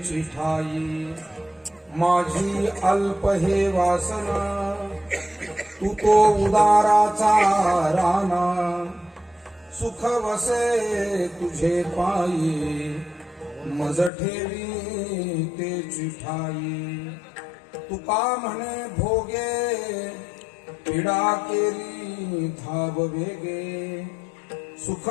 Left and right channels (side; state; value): right; drops out; at 14.1 s